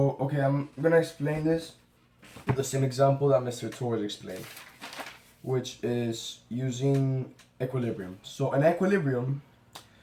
okay, I'm gonna explain this with the same example that Mr. Torres explained, which is using equilibrium. So an equilibrium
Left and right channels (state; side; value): identical; both; correlation 1.00